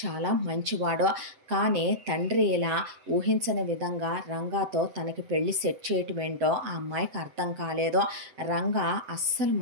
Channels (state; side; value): late; left; 7.9 ms